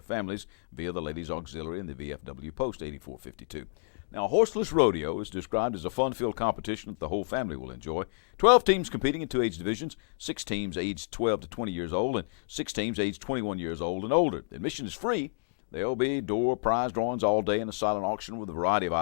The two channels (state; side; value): silent; right; digital silence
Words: families via the Ladies Auxiliary and the VFW Post 8452. Now, Horseless Rodeo is described as a fun-filled competition that the whole family will enjoy. 12 teams competing in 2 age divisions, 6 teams aged 12 to 20 years old, and 6 teams aged 21 years old and older. Admission is free. There will be door prize drawings all day and a silent auction with a variety of